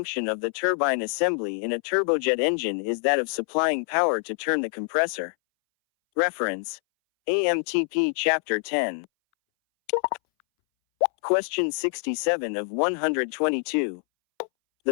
of the turbine assembly in a turbojet engine is that of supplying power to turn the compressor. Reference: AMTP Chapter 10. Question 67 of 122.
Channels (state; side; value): silent; right; 61 dB below the other